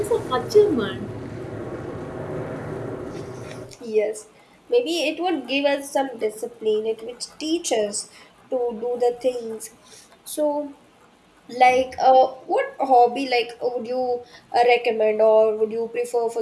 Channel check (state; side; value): identical; both; correlation 1.00